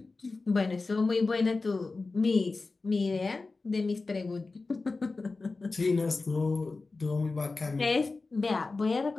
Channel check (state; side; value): quieter; right; 3.7 dB